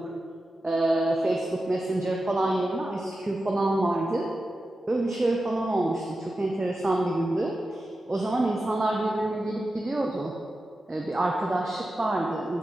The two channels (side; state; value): both; normal; correlation 0.92